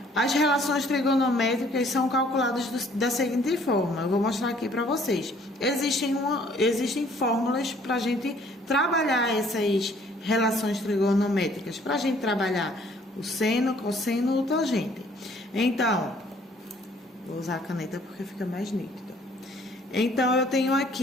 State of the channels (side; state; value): both; normal; correlation 0.59